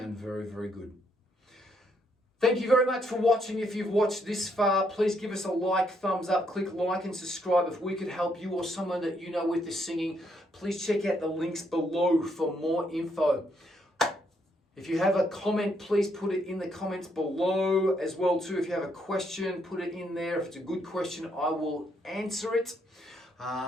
very, very good. Thank you very much for watching. If you've watched this far, please give us a like, thumbs up, click like and subscribe. If we could help you or someone that you know with the singing, please check out the links below for more info. If you have a comment, please put it in the comments below as well too. If you have a question, put it in there. If it's a good question, I will answer it.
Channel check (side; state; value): both; normal; correlation 0.74